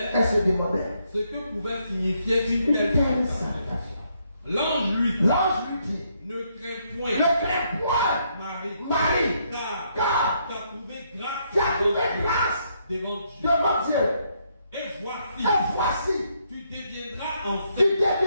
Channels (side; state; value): both; inverted; correlation -0.74